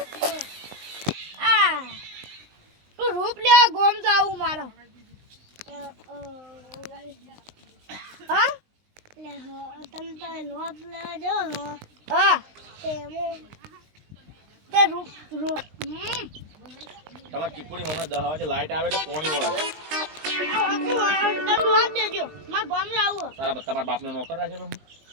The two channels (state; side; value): late; left; 19 ms